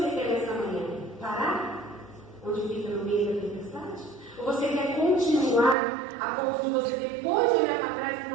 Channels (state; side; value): drops out; left; at 5.8 s